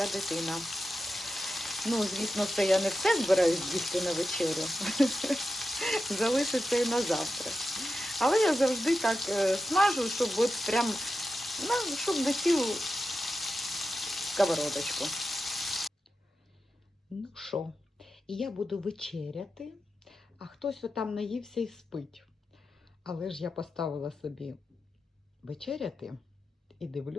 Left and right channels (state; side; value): normal; both; correlation 0.90